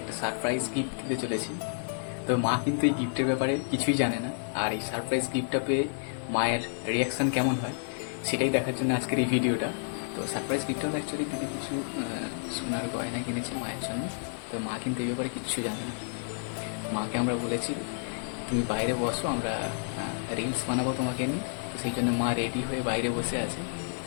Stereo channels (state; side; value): silent; right; digital silence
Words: একটা সারপ্রাইজ গিফট দিতে চলেছি। তো মা কিন্তু এই গিফটের ব্যাপারে কিছুই জানে না, আর এই সারপ্রাইজ গিফটটা পেয়ে মায়ের রিয়াকশান কেমন হয় সেটাই দেখার জন্য আজকের এই ভিডিওটা। তো সারপ্রাইজ গিফটটা অ্যাকচুয়ালি দিদি কিছু সোনার গয়না কিনেছে মায়ের জন্য। তো মা কিন্তু এই ব্যাপারে কিচ্ছু জানে না। মাকে আমরা বলেছি তুমি বাইরে বসো, আমরা রিলস বানাবো তোমাকে নিয়ে। তো সেই জন্য মা রেডি হয়ে বাইরে বসে আছে,